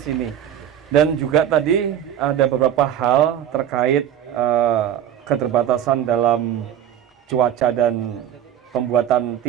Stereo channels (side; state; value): left; quieter; 10.3 dB